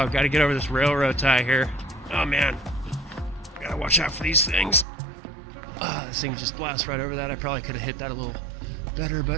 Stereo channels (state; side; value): drops out; left; at 4.9 s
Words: gotta get over this railroad tie here. Oh man, gotta watch out for these things. This thing just blasts right over that. I probably could have hit that a little better,